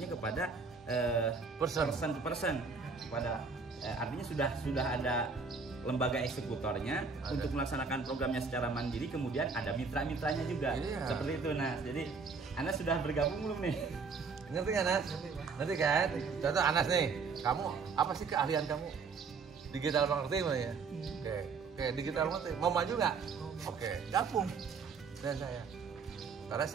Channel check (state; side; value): quieter; left; 4.9 dB